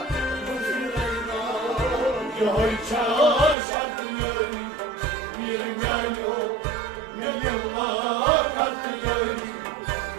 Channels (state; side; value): drops out; left; at 3.6 s